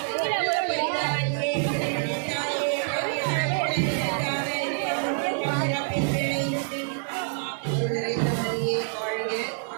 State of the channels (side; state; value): left; silent; digital silence